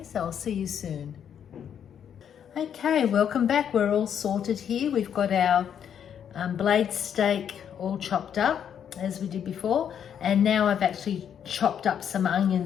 so I'll see you soon. Okay, welcome back. We're all sorted here. We've got our blade steak all chopped up as we did before, and now I've actually chopped up some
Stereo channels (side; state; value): right; quieter; 8.6 dB